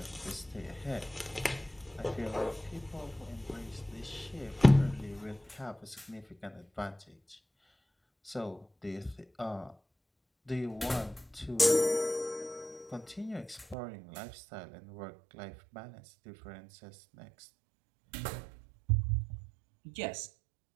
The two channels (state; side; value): drops out; left; at 13.8 s